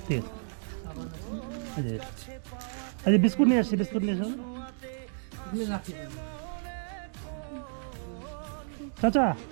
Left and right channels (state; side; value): silent; left; digital silence